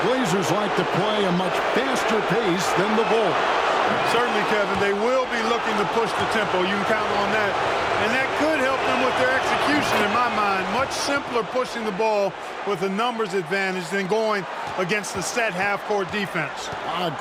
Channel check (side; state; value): both; identical; correlation 1.00